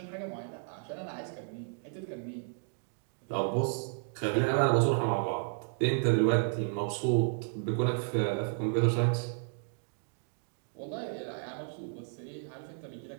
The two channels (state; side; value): silent; left; 56 dB below the other